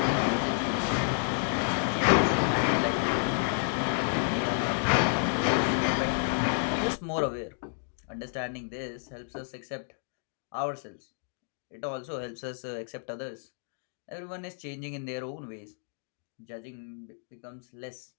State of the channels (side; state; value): right; silent; digital silence